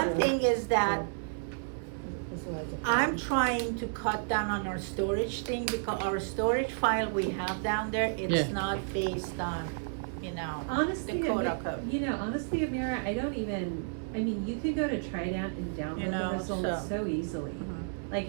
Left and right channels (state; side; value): silent; left; digital silence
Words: yeah. thing is that That's what I was- I'm trying to cut down on our storage thing, because our storage file we have down there, it's Yeah. not based on, you know, Honestly, the quote unquote. you know, honestly, Amira, I don't even, I mean, you could go to Trident and You download know, the results so easily. Mhm. Like,